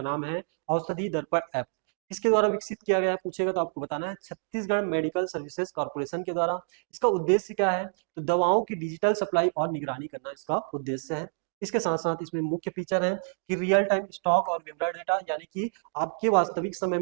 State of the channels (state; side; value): silent; left; digital silence